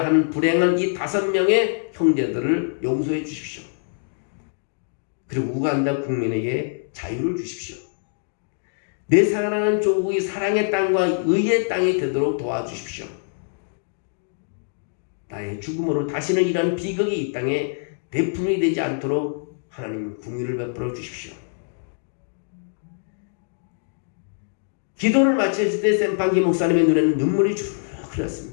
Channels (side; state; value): right; silent; digital silence